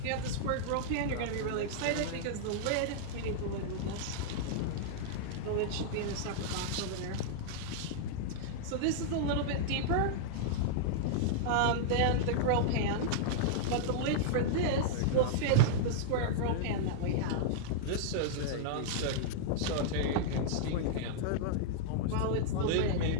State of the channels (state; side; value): different; both; correlation -0.01